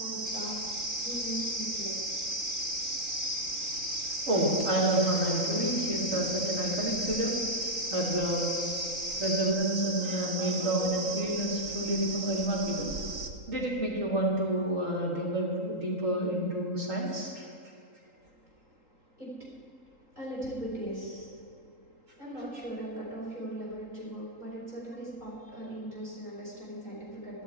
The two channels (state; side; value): late; left; 3.8 ms